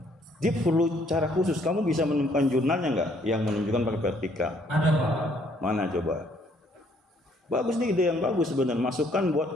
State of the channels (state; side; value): normal; both; correlation 0.65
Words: Dia perlu cara khusus. Kamu bisa menemukan jurnalnya nggak yang menunjukkan pakai vertikal? Ada Pak. Mana coba? Bagus nih, ide yang bagus sebenarnya. Masukkan buat